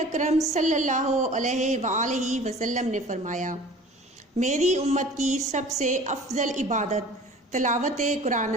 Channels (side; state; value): both; normal; correlation 0.44